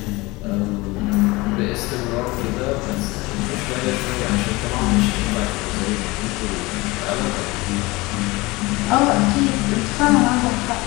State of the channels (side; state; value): right; quieter; 22.4 dB